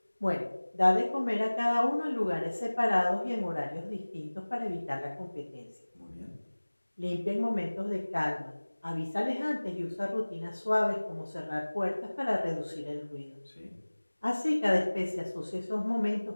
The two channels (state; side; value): inverted; both; correlation -1.00